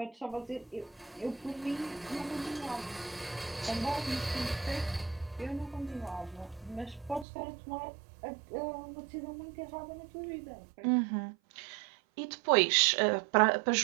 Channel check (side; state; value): left; drops out; at 7.2 s